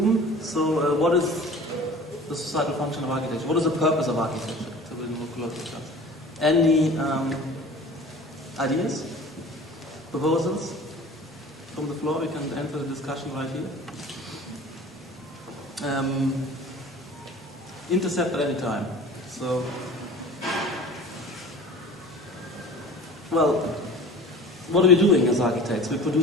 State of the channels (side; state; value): both; normal; correlation 0.42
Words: So what is the societal function of architecture? What is the purpose of architecture? Any ideas? Proposals? From the floor, we can enter the discussion right here. Intercept at any time. So, well, what are we doing as architects? We